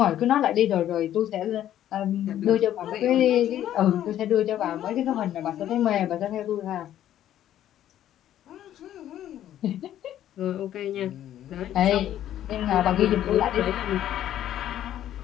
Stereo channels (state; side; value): quieter; right; 11.7 dB